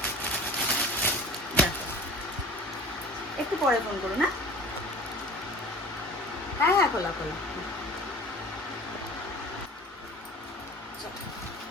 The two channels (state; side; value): normal; both; correlation 0.41